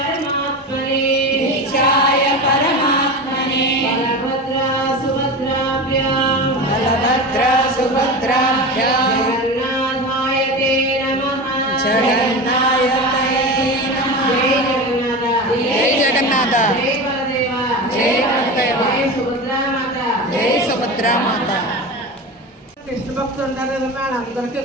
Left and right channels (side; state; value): both; normal; correlation 0.27